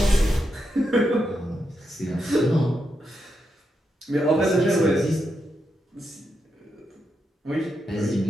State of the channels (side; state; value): both; normal; correlation 0.84